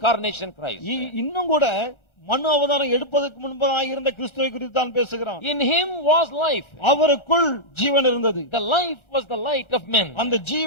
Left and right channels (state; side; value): late; right; 1.3 ms